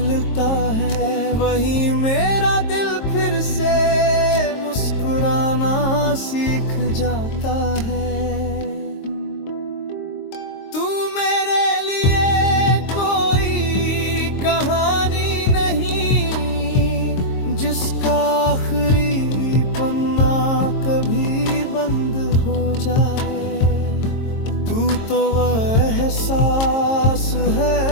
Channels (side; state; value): right; late; 22 ms